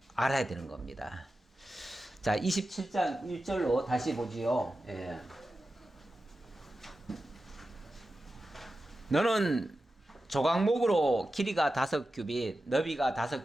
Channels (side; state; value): both; normal; correlation 0.92